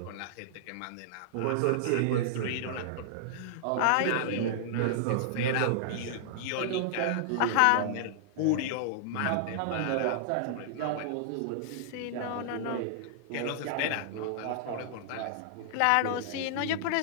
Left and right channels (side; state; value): both; different; correlation -0.01